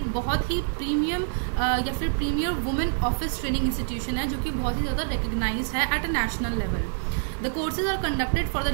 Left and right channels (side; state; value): left; silent; digital silence